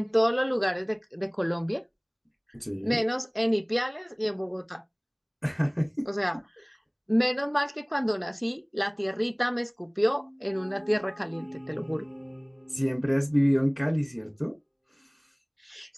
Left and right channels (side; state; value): both; identical; correlation 1.00